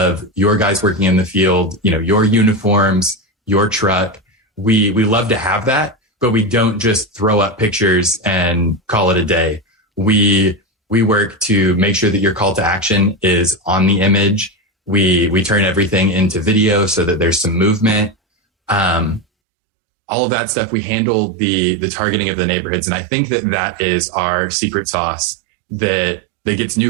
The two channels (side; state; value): left; drops out; at 19.2 s